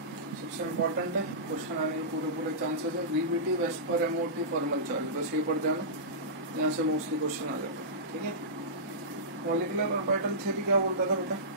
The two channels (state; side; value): normal; both; correlation -0.18